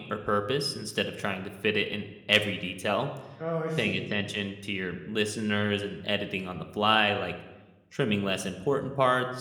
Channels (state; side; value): identical; both; correlation 1.00